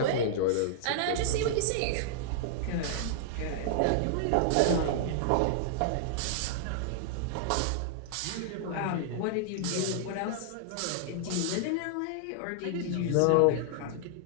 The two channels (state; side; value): different; both; correlation -0.01